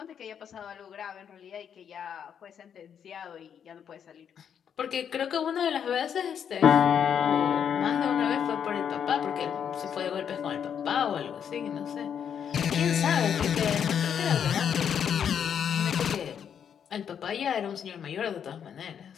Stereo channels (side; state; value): right; quieter; 8.1 dB